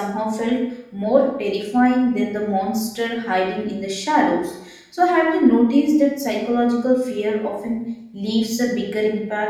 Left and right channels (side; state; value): both; identical; correlation 1.00